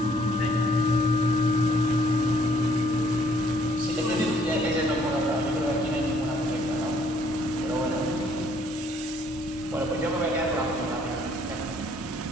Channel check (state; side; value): normal; both; correlation 0.63